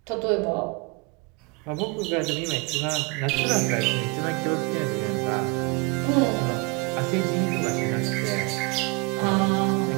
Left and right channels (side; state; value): left; quieter; 30.2 dB